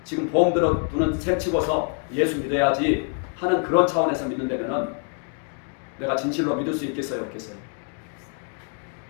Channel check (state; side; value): quieter; right; 39.7 dB